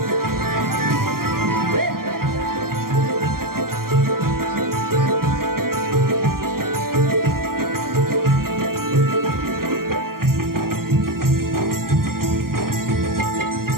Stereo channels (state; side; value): late; left; 0.92 ms